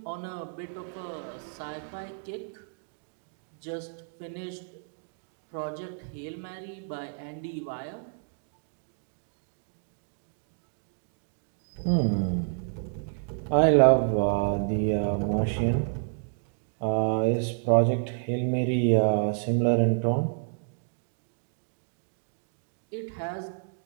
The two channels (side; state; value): left; silent; digital silence